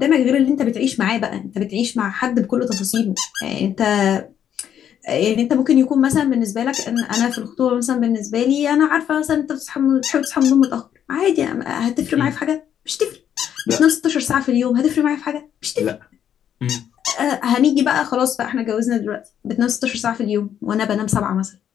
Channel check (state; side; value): quieter; right; 9.5 dB